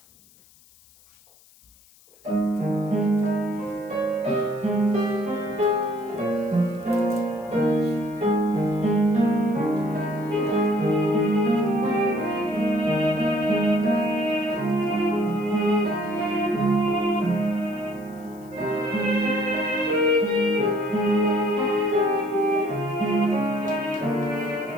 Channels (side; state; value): left; noise; hiss, 28 dB below the sound